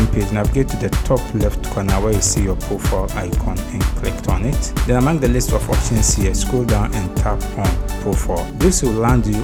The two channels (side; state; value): both; identical; correlation 1.00